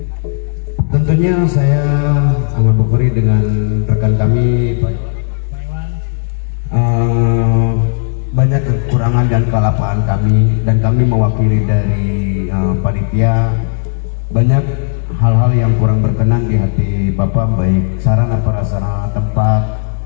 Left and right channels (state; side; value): silent; right; digital silence